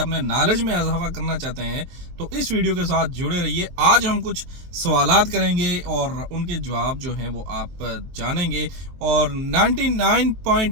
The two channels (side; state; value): left; late; 23 ms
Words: نالج میں اضافہ کرنا چاہتے ہیں تو اس ویڈیو کے ساتھ جڑے رہیے۔ آج ہم کچھ سوالات کریں گے اور ان کے جواب جو ہیں وہ آپ جانیں گے، اور